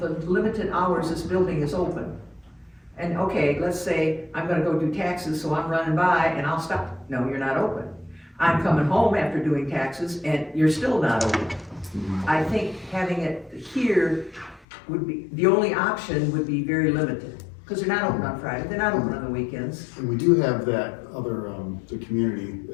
limited hours this building is open. And okay, let's say I'm gonna go do taxes, so I'm running by and I'll stop. No, you're not open. I'm coming home after doing taxes and you're still not open. I think having it here would be, the only option would be very limited. Cause they're not open on Friday, they're not open on the weekends. And we do have that other, the community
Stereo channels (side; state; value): right; drops out; at 14.7 s